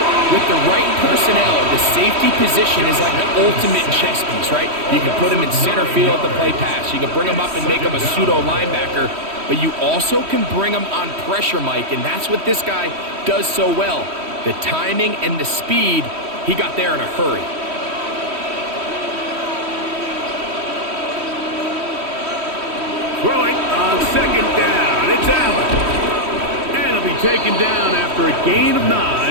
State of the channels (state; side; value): late; left; 3.1 ms